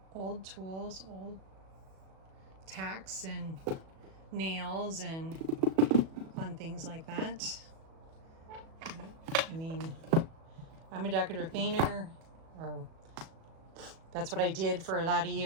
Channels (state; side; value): late; left; 37 ms